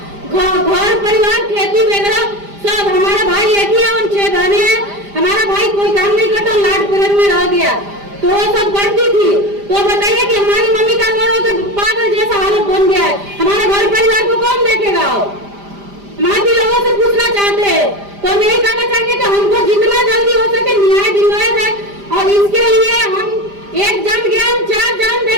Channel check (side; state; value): left; late; 5.0 ms